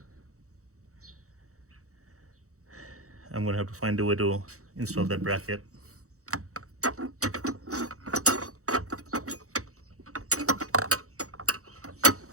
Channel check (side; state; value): left; late; 0.65 ms